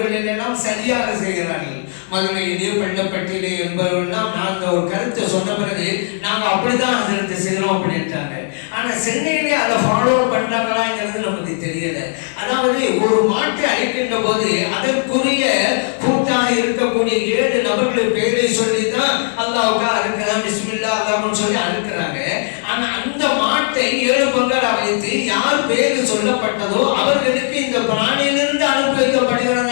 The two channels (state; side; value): silent; right; digital silence